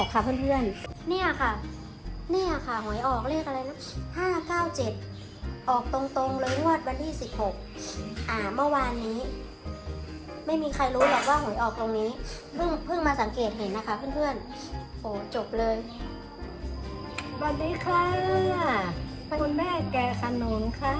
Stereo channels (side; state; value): both; identical; correlation 1.00